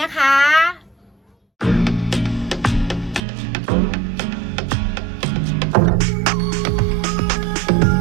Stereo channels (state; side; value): drops out; left; at 3.2 s